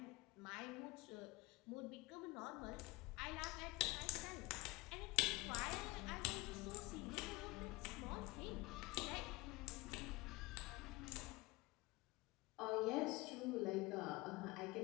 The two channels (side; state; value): right; quieter; 22.6 dB